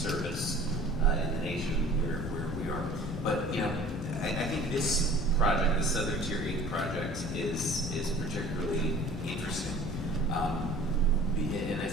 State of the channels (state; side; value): normal; both; correlation 0.46